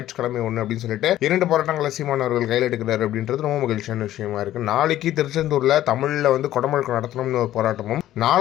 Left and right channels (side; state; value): right; quieter; 13.4 dB